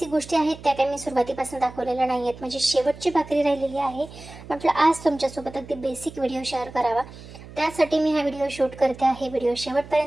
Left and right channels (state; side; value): noise; right; hum, 17 dB below the sound